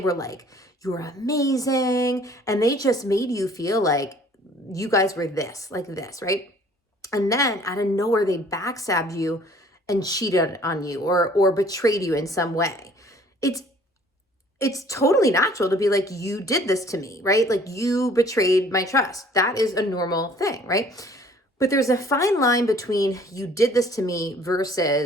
like, you're amazing. And they just made you feel like you guys were this, like this, right? And then out of nowhere, they backstabbed you and cheated on you or betrayed you in some way. It's totally natural to be like, you did this to me, right? Like you betrayed my trust. That is a normal thing, right? But there's a fine line between you did this to me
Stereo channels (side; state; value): both; normal; correlation 0.55